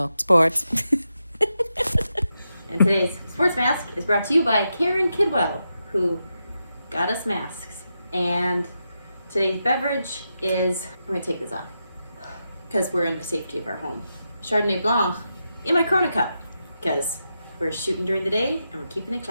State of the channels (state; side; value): inverted; both; correlation -0.86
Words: Sports. And today's sports mask is brought to you by Karen Kidwell, who got us masks. And today's beverage is, I'm going to take this off because we're in the safety of our home. Chardonnay Blanc in my Corona cup because we're shooting during the day and we're keeping it